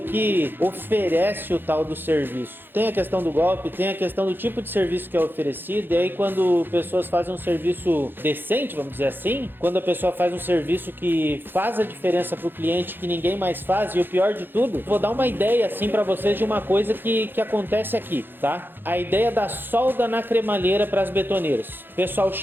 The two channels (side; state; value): left; late; 0.098 ms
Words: oferece o tal do serviço. Tem a questão do golpe, tem a questão do tipo de serviço que é oferecido, e aí quando pessoas fazem um serviço decente, vamos dizer assim, quando a pessoa faz um serviço que faz a diferença para o cliente, que ninguém mais faz, e o pior de tudo, vou dar uma ideia assim para vocês de uma coisa que acontece aqui, tá? A ideia da solda na cremalheira para as betoneiras. O pessoal